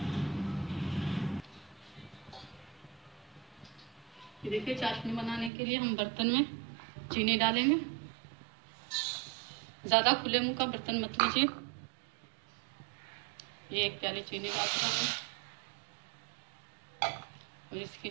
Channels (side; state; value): left; drops out; at 5.5 s